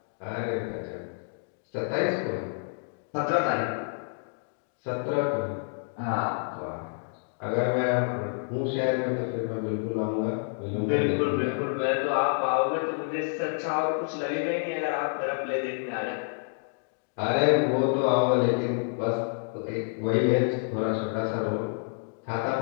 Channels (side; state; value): right; silent; 59 dB below the other